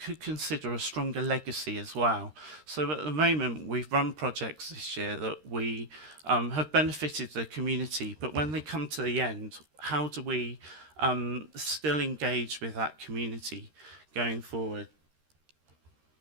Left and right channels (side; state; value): left; late; 13 ms